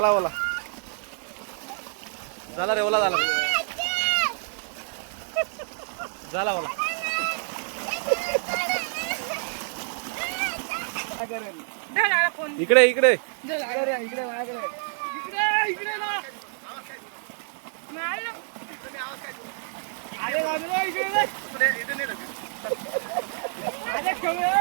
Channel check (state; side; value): silent; left; digital silence